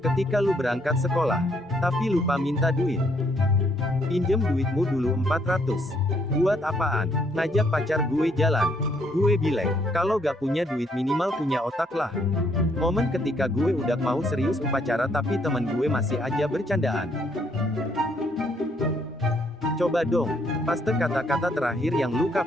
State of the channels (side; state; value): both; normal; correlation 0.70